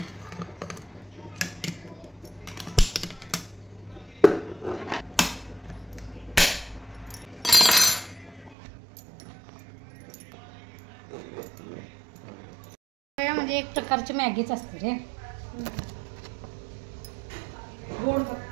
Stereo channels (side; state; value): left; drops out; at 8.6 s